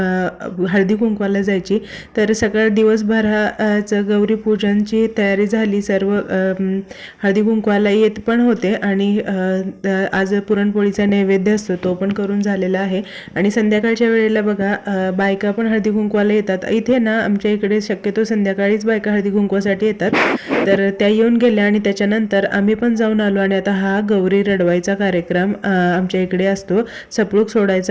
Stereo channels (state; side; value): identical; both; correlation 1.00